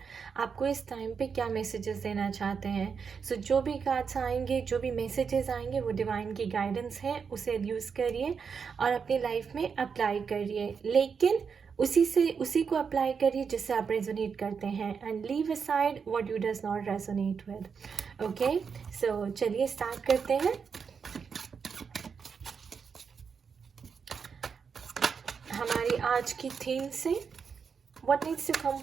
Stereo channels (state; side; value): quieter; left; 6.1 dB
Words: आपको इस टाइम पे क्या मैसेजेस देना चाहते हैं. सो जो भी कार्ड्स आएंगे, जो भी मैसेजेस आएंगे, वो डिवाइन की गाइडेंस है. उसे यूज़ करिए और अपनी लाइफ में अप्लाई करिए, लेकिन उसी को अप्लाई करिए जिससे आप रेजोनेट करते हैं. And leave aside what you does not resonate with. Okay, so चलिए स्टार्ट करते हैं. हमारी आज की थीम से what needs to come